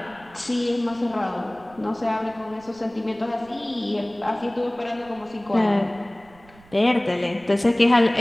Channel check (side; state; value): right; noise; rumble, 25 dB below the sound